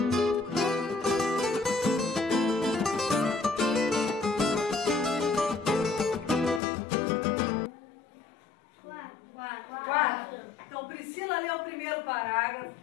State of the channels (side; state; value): right; drops out; at 6.6 s